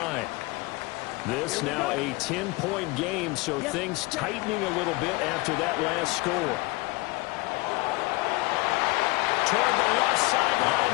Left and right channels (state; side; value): quieter; right; 23.1 dB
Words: This now a 10-point game, so things tightening a little bit after that last score. Toward the left sideline,